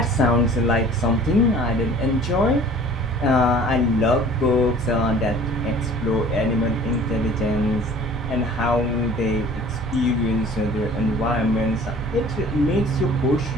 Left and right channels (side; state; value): both; normal; correlation 0.48